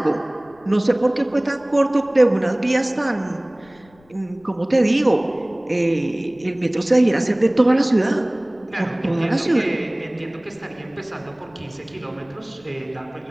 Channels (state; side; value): noise; left; rumble, 30 dB below the sound